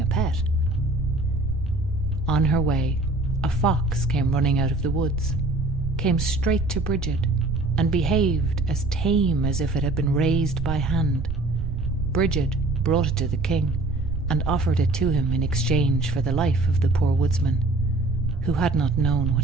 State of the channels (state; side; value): noise; right; rumble, 4 dB below the sound